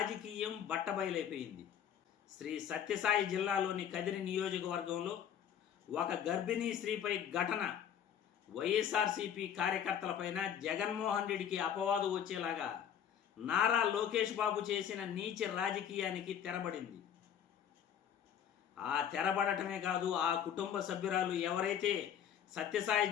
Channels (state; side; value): quieter; right; 9.1 dB